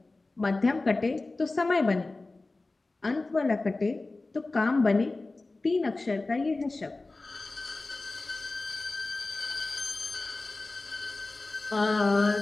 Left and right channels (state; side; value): quieter; right; 3.3 dB